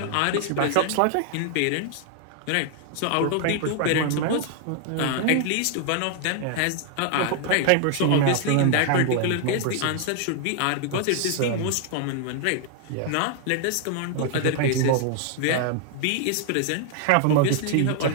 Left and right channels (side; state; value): both; different; correlation 0.00